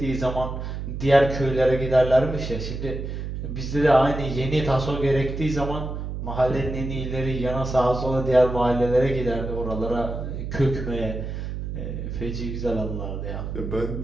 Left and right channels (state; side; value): noise; right; hum, 5 dB below the sound